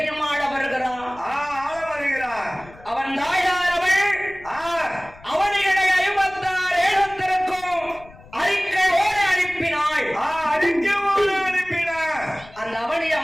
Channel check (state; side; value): noise; left; rumble, 22 dB below the sound